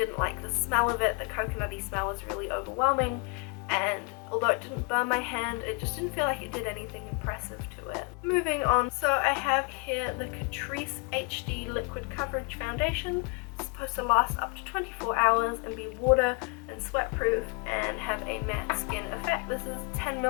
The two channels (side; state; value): right; quieter; 30.6 dB